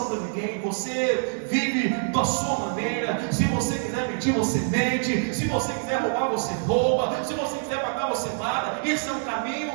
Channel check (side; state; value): left; silent; digital silence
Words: para ninguém. Você vive da sua maneira. Se você quiser mentir, você mente. Se você quiser roubar, você rouba. Se você quiser pagar, você paga. Esse é um